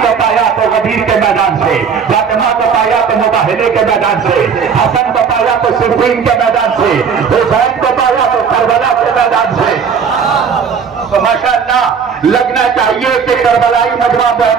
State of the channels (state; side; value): quieter; left; 6.4 dB